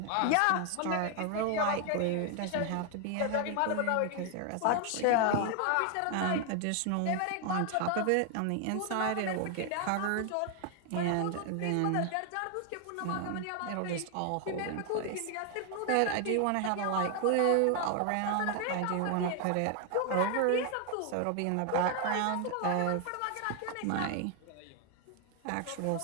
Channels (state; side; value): different; both; correlation 0.00